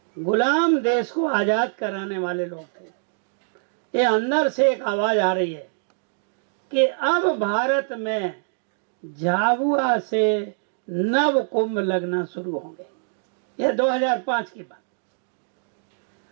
गुलाम देश को आजाद कराने वाले लोग थे। ये अंदर से एक आवाज आ रही है कि अब भारत में झाबुआ से नव कुंभ लगना शुरू होंगे। ये 2005 की बात,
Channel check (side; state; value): left; silent; digital silence